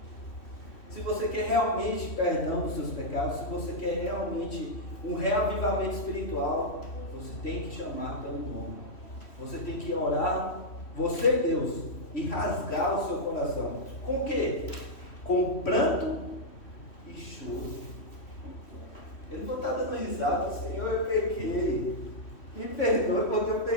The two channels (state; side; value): late; right; 3.1 ms